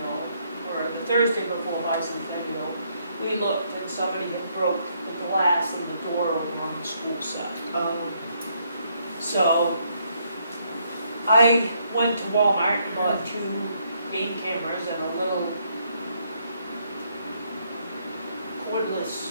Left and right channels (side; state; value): both; inverted; correlation -0.72